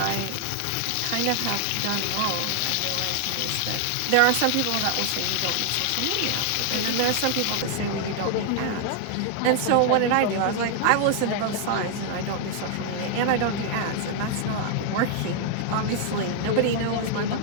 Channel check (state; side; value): different; both; correlation 0.00